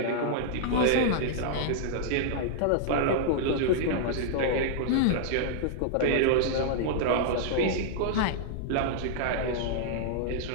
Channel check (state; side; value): different; both; correlation -0.01